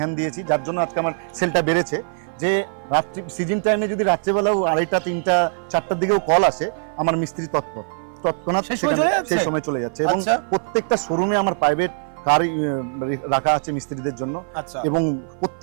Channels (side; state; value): left; silent; 56 dB below the other